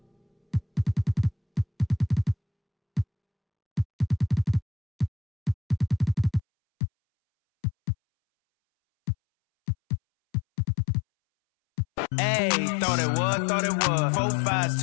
Hey, thought it was. 4 5s,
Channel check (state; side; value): drops out; right; at 6.4 s